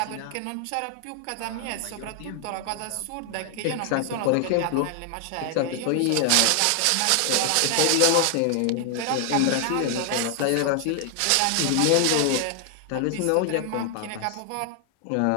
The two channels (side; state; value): both; different; correlation 0.00